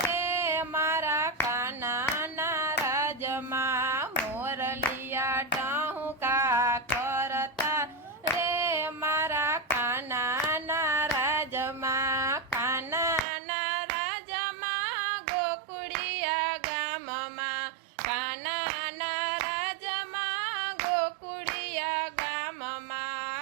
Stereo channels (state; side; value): drops out; left; at 13.2 s